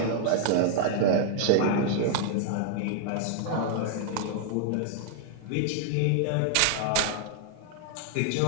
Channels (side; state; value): both; different; correlation 0.00